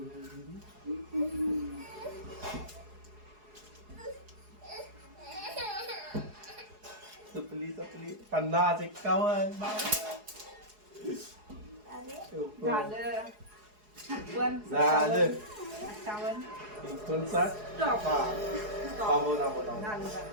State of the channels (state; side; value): late; left; 4.8 ms